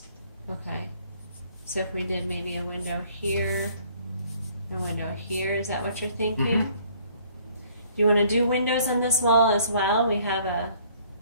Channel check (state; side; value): inverted; both; correlation -0.60